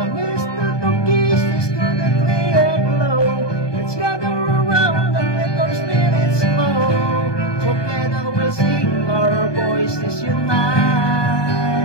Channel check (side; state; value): right; late; 1.2 ms